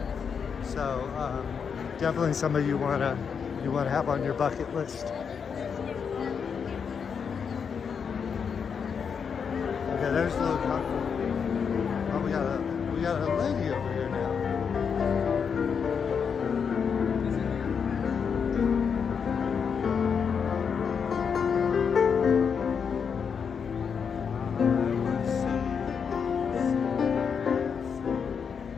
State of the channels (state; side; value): quieter; right; 6.5 dB